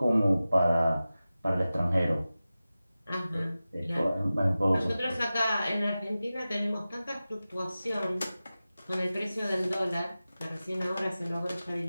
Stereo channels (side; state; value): both; inverted; correlation -0.95